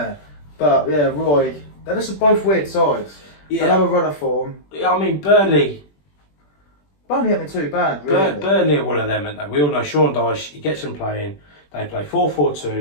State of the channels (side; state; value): right; late; 21 ms